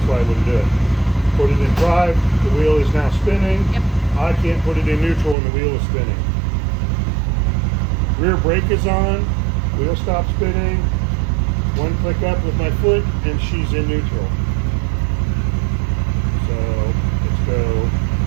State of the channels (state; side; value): drops out; left; at 5.4 s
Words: why I wouldn't do it. Put it in drive, the wheel is now spinning. Yep. I can't put it in neutral and the wheel is spinning. Rear brake is on, wheel stops spinning. 1 click up with my foot and she's in neutral. So let's go